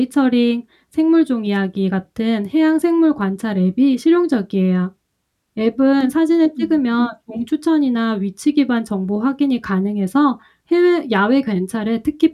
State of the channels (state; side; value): identical; both; correlation 1.00